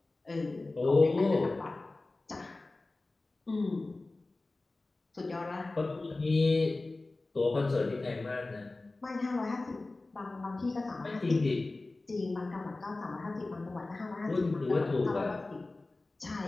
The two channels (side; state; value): right; quieter; 3.1 dB